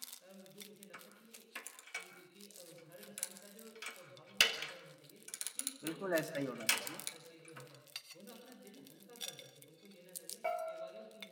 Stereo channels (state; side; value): identical; both; correlation 1.00